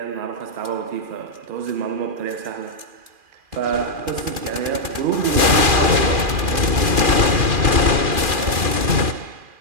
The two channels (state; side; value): late; left; 2.4 ms